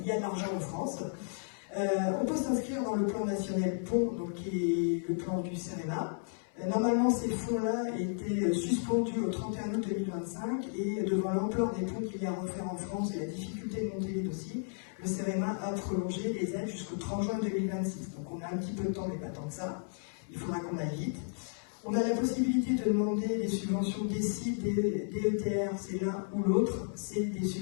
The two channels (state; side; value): silent; right; 56 dB below the other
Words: y a de l'argent en France. On peut s'inscrire dans le plan national pont, donc qui est le plan du CEREMA. Normalement, ces fonds-là étaient suspendus au 31 août 2025 et devant l'ampleur des ponts qu'il y a à refaire en France et la difficulté de monter les dossiers, le CEREMA a prolongé les aides jusqu'au 30 juin 2026. Donc on a un petit peu de temps, mais pas tant que ça. Il faudra qu'on aille vite. On a la possibilité de demander des subventions DECIL, DETR, c'est l'un ou l'autre, c'est des